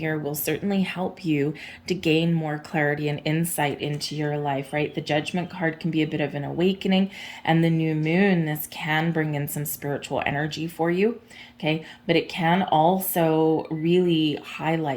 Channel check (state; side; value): identical; both; correlation 1.00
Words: will certainly help you to gain more clarity and insight into your life, right? The Judgment card can be a bit of an awakening, and the new moon, this can bring in some spiritual energy for you, okay? But it can also really